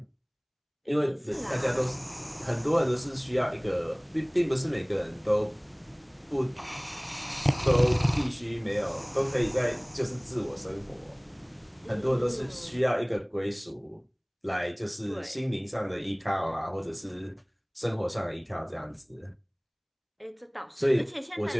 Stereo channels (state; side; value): identical; both; correlation 1.00